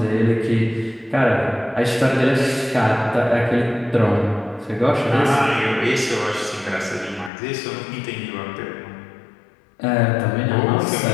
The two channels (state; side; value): drops out; right; at 7.3 s